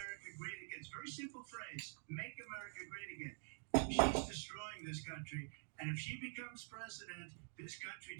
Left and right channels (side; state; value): left; silent; digital silence